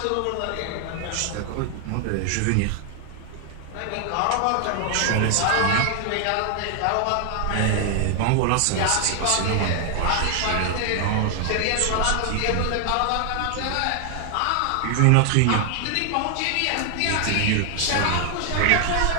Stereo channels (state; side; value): different; both; correlation 0.00